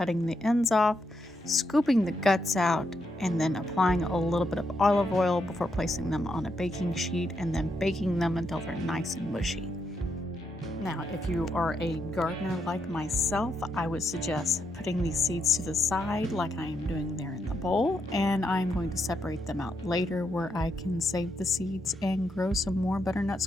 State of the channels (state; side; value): normal; both; correlation 0.80